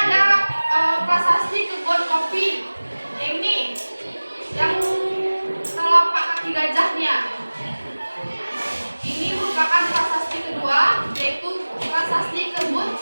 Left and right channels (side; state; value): both; inverted; correlation -1.00